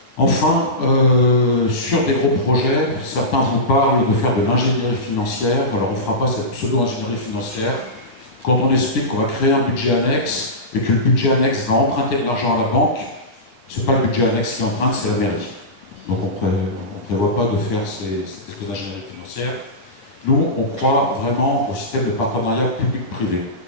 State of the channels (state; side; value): late; right; 8.9 ms